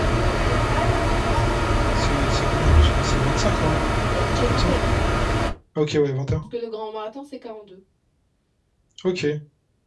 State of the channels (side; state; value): both; identical; correlation 1.00